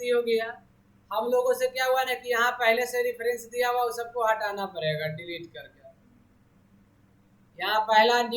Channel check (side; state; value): both; identical; correlation 1.00